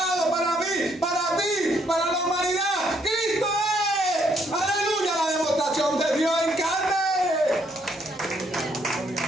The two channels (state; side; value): normal; both; correlation 0.70